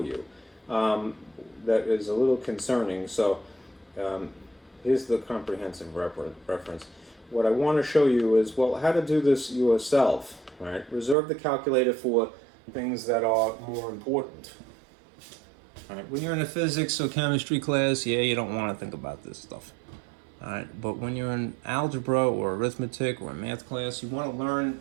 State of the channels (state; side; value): drops out; left; at 11.2 s